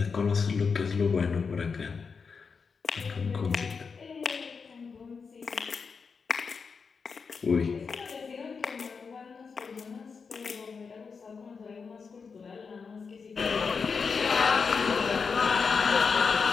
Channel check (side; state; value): right; quieter; 5.4 dB